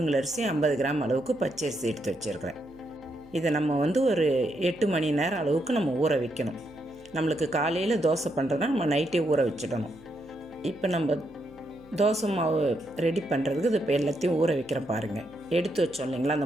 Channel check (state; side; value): noise; right; hum, 27 dB below the sound